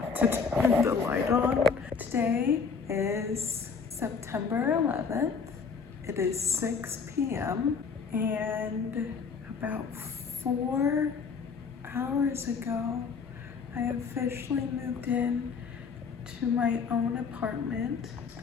to turn the light on. Today is September 11th. It is 6 p.m. and about 4 hours ago, I officially moved in to my own apartment.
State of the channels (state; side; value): quieter; right; 5.5 dB